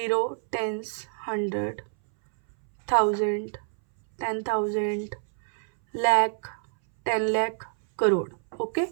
टेंस, 100, 1000, 10,000, लाख, 10 लाख, करोड़। ओके,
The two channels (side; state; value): left; silent; 60 dB below the other